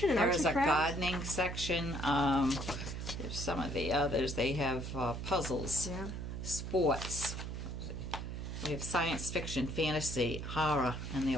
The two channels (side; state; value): right; noise; hum, 6 dB below the sound